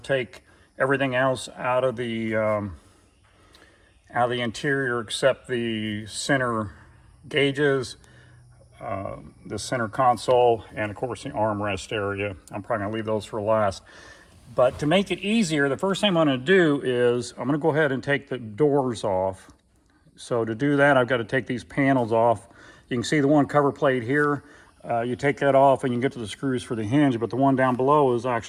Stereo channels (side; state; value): both; identical; correlation 1.00